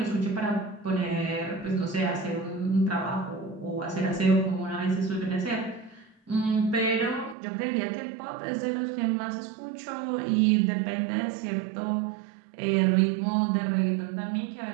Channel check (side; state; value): left; drops out; at 7.4 s